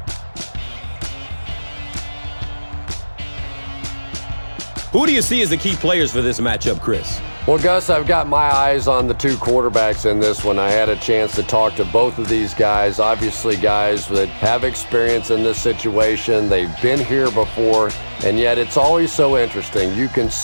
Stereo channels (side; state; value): both; inverted; correlation -1.00